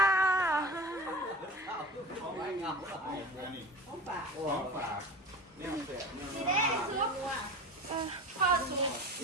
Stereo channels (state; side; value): normal; both; correlation 0.35